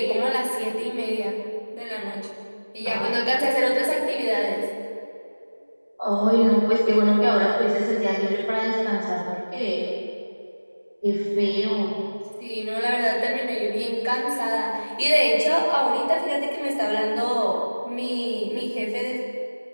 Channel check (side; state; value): both; inverted; correlation -1.00